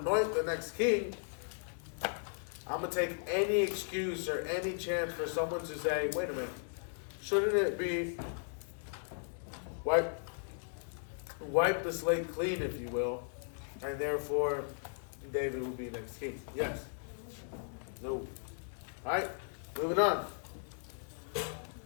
the next king, I'm going to take any excuse or any chance for someone to say, wait a minute, shouldn't it be wipe the slate clean, if you will, and therefore David will be next king? Yes. No. Alright, moving on.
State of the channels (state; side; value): silent; right; digital silence